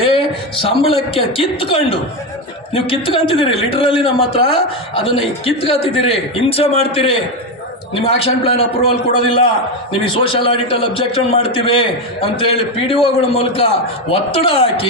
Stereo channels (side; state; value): both; normal; correlation 0.11